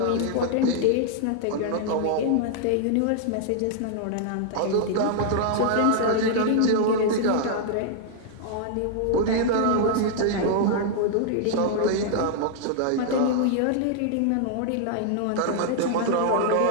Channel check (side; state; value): both; different; correlation -0.01